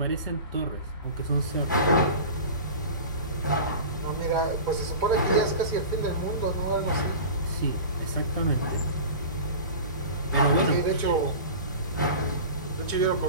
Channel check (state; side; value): inverted; both; correlation -0.34